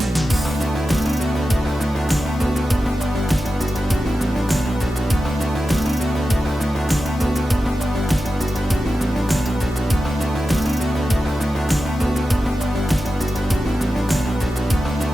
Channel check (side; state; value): both; normal; correlation 0.92